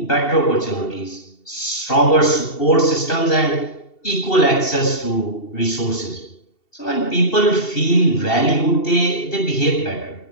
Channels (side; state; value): right; late; 2.7 ms